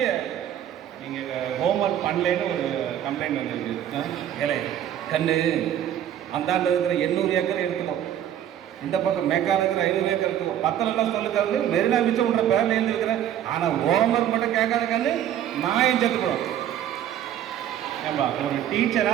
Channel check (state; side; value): quieter; left; 10.7 dB